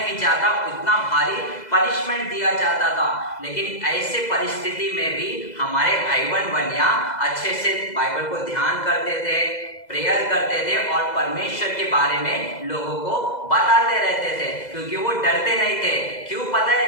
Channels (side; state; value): right; late; 2.0 ms